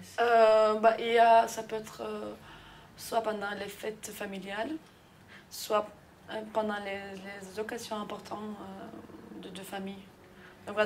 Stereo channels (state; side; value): identical; both; correlation 1.00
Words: Ça peut être soit pendant les fêtes familiales, soit pendant les occasions importantes de famille. Donc